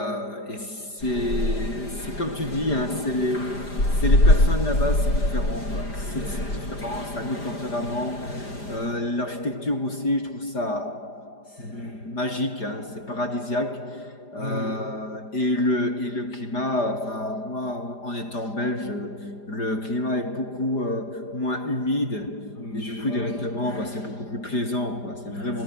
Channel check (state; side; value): late; right; 5.0 ms